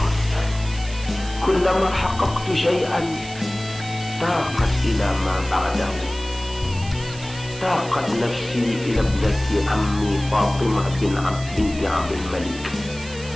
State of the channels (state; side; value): noise; right; hiss, 16 dB below the sound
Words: kullama haqqaqtu syai'an taqat ila ma ba'dahu. Taqat nafsi ila ibnati ammi Fatimah binti Abdul Malik,